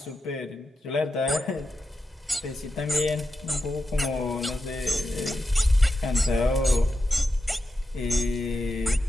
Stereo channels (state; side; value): normal; both; correlation 0.89